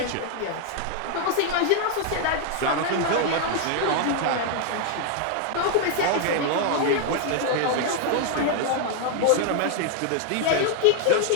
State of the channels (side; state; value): both; different; correlation 0.00